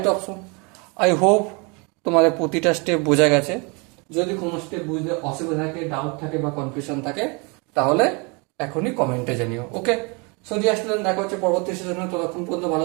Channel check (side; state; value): left; quieter; 31.0 dB